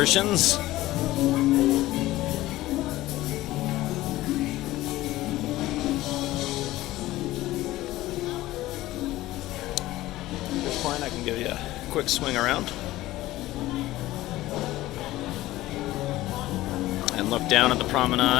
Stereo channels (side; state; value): right; quieter; 16.7 dB